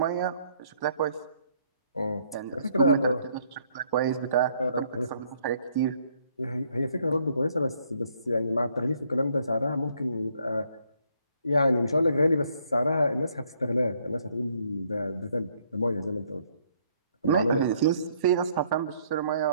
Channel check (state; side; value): inverted; both; correlation -0.67